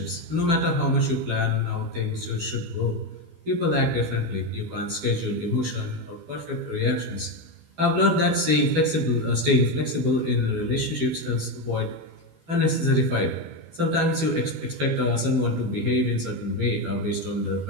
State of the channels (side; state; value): left; late; 12 ms